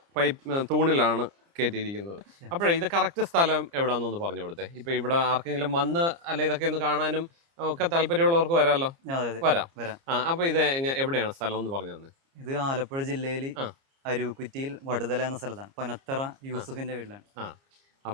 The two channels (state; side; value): late; left; 30 ms